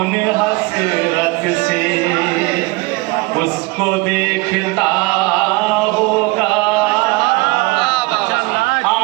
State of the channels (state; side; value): quieter; left; 24.1 dB